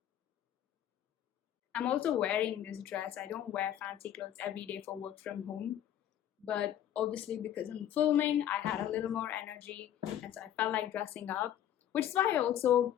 I'm also wearing this dress. I don't wear fancy clothes every day for work from home, but obviously because I'm filming, I had a little more energy, and so I felt like dressing up, which is why I also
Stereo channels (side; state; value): right; quieter; 10.9 dB